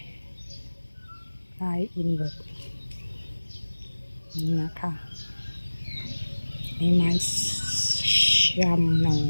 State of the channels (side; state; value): both; inverted; correlation -1.00